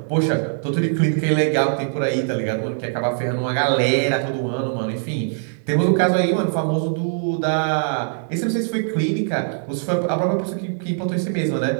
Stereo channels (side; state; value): left; silent; 64 dB below the other